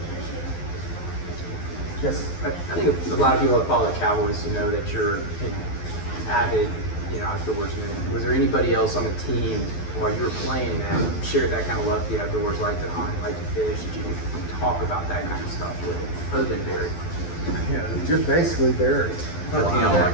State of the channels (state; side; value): late; right; 12 ms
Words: Yes. I think a lot of people that follow the Cowboys know that you're an avid, outdoorsman. Was there anybody else on the team while you were playing that shared that kind of love for the outdoors, like to hunt, like to fish? Did you talk about that kind of stuff with other than Barry? Yeah, just basically Barry. Dion